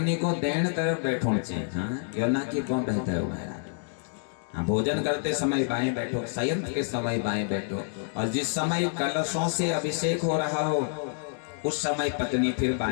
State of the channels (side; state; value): right; silent; digital silence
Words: को दैन तरफ बैठो चाहिए। हाँ, यो ना कि कौन रहता है महाराज। हाँ, भोजन करते समय बाएं बैठो, शयन के समय बाएं बैठो, और जिस समय कलशों से अभिषेक हो रहा हो उस समय पत्नी फिर